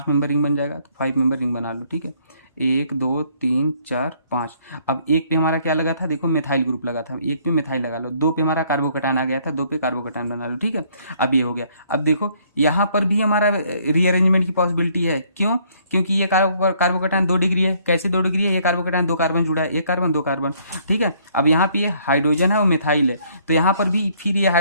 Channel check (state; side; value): inverted; both; correlation -0.64